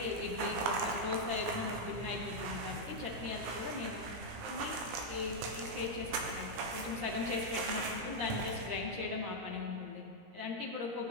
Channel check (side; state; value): left; late; 17 ms